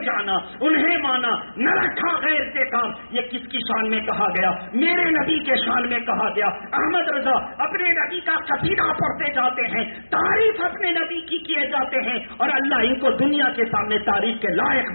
جانا, انہیں مانا, نہ رکھا غیر سے کام. یہ کس کی شان میں کہا گیا؟ میرے نبی کے شان میں کہا گیا. احمد رضا اپنے نبی کا قصیدہ پڑھتے جاتے ہیں, تعریف اپنے نبی کی کیے جاتے ہیں, اور اللہ ان کو دنیا کے سامنے تعریف کے لائق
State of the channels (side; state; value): both; inverted; correlation -1.00